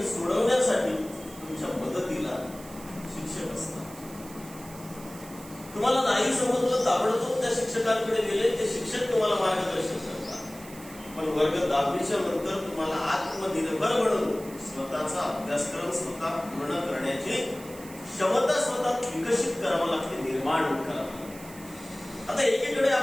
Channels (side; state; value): right; noise; hiss, 18 dB below the sound